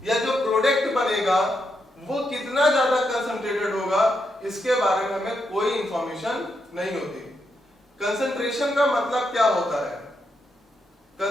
जो प्रोडक्ट बनेगा वो कितना ज्यादा कंसंट्रेटेड होगा, इसके बारे में हमें कोई इंफॉर्मेशन नहीं होती। कंसंट्रेशन का मतलब क्या होता है?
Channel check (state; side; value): normal; both; correlation 0.82